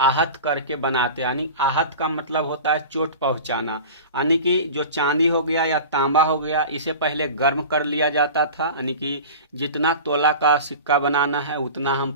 करके बनाते हैं। यानी आहत का मतलब होता है चोट पहुंचाना। यानी कि जो चांदी हो गया या तांबा हो गया इसे पहले गर्म कर लिया जाता था। यानी कि जितना तोला का सिक्का बनाना है उतना हम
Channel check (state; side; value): inverted; both; correlation -0.35